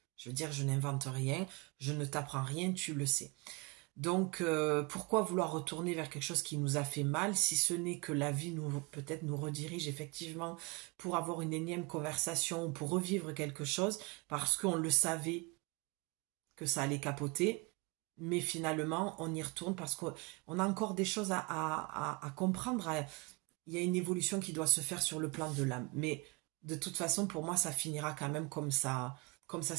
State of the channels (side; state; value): left; quieter; 26.5 dB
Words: Je veux dire, je n'invente rien, je ne t'apprends rien, tu le sais. Donc, pourquoi vouloir retourner vers quelque chose qui nous a fait mal, si ce n'est que la vie peut-être nous redirige effectivement pour avoir une énième conversation ou pour revivre quelque chose, parce qu'on le savait que ça allait capoter, mais finalement, on y retourne parce qu'on a encore des choses à comprendre. Il y a une évolution qui doit se faire sur le plan de l'âme. Mais de toute façon, pour moi, ça finira quand même comme ça